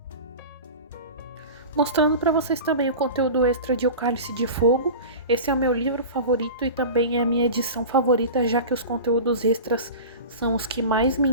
Mostrando para vocês também o conteúdo extra de O Cálice de Fogo. Esse é o meu livro favorito e também é a minha edição favorita, já que os conteúdos extras são os que mais me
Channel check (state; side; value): inverted; both; correlation -0.33